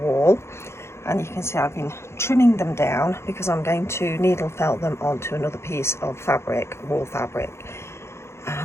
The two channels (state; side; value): late; right; 0.13 ms